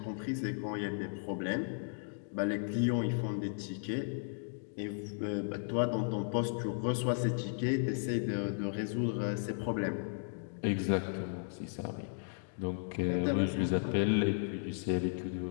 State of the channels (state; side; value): silent; right; digital silence